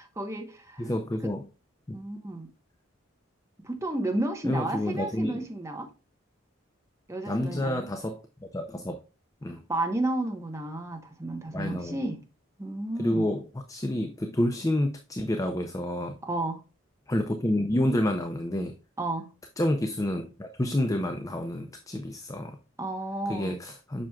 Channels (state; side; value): normal; both; correlation 0.83